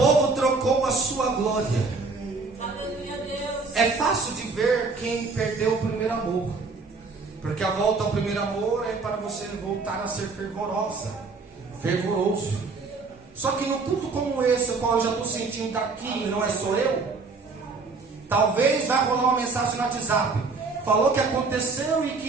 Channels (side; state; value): left; quieter; 4.2 dB